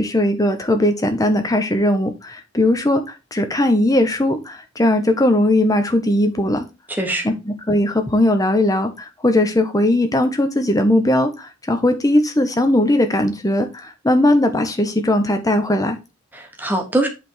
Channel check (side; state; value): both; normal; correlation 0.73